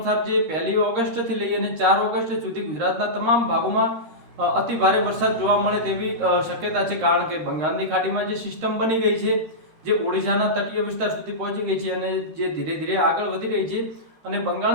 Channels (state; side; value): late; left; 13 ms